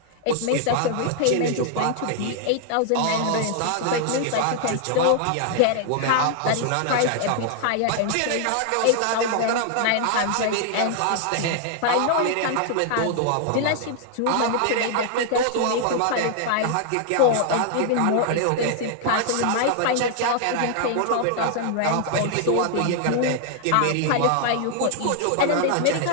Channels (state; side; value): different; both; correlation 0.00